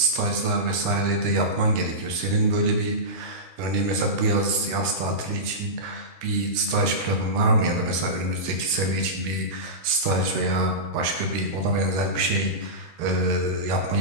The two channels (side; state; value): left; late; 13 ms